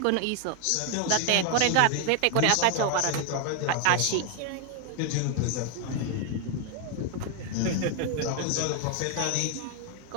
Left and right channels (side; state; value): both; different; correlation 0.01